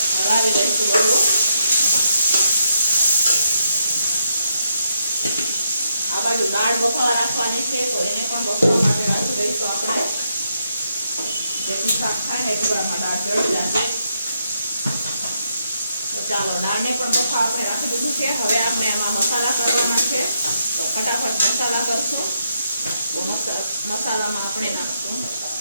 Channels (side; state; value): both; inverted; correlation -0.79